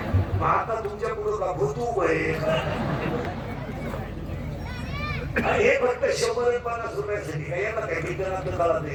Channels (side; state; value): both; identical; correlation 1.00